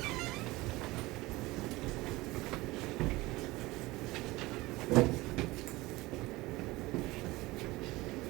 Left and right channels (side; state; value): left; quieter; 20.4 dB